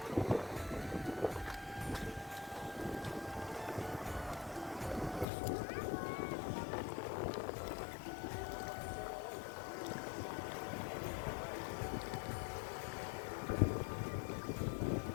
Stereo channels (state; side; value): drops out; right; at 5.2 s